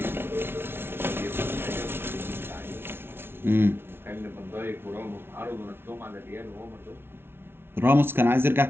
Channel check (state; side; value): late; left; 0.11 ms